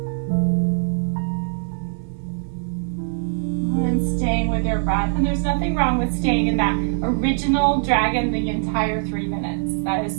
And staying with your breath. And there's nothing wrong with staying in that original dragon the entire 3 minutes. That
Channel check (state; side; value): silent; left; 59 dB below the other